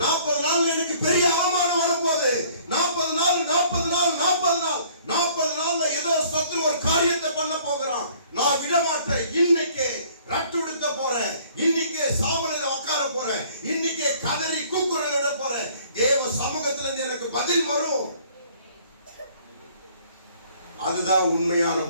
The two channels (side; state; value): both; inverted; correlation -0.57